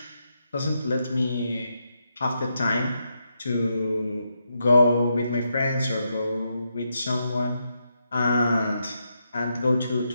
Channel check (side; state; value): both; inverted; correlation -0.82